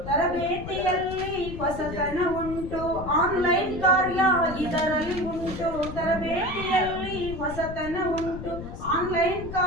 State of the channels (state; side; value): noise; left; rumble, 10 dB below the sound